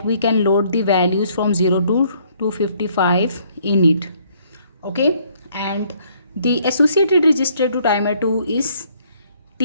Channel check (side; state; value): both; inverted; correlation -0.65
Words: we can load the values from 0 to 255 in it. Okay, and the associated register to timer 2 is